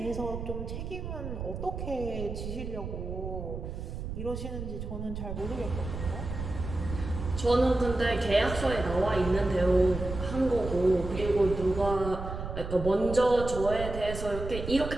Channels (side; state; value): right; noise; rumble, 7 dB below the sound